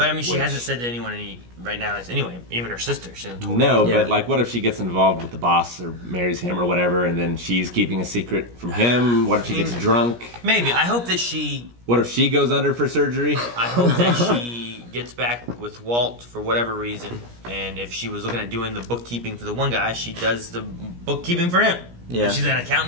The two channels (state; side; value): late; left; 17 ms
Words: I mean, she Which- hasn't said to anyone right now. Anyway, even her sister. She hasn't told No, me. but like, what if she gets involved with the boss or marries him or whatever, and then she's keeping a secret from him? What if she gets drunk? Maybe. I hope that she. What if she goes under for surgery? I hope that she gets back with Walt for whatever reason, and if she was looking at doing the bookkeeping for the one guy, she does the bookkeeping for him. Yeah. If she's an